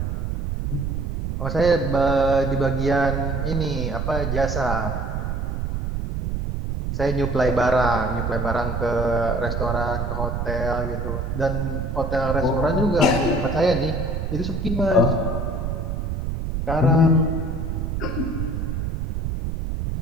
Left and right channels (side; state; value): right; noise; rumble, 2 dB below the sound